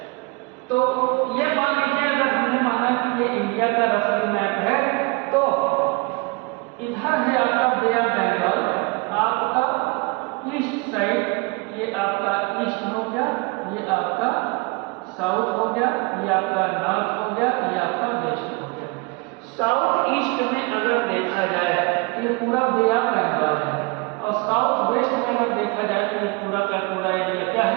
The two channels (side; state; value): left; quieter; 28.1 dB